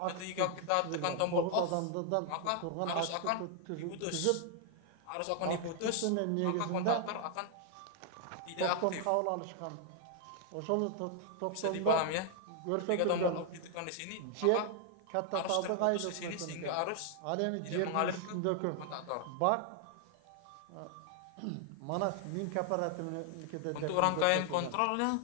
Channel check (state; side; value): different; both; correlation 0.00